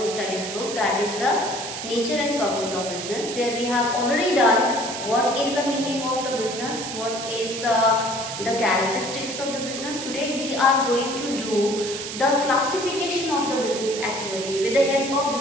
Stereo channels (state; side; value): noise; right; hiss, 7 dB below the sound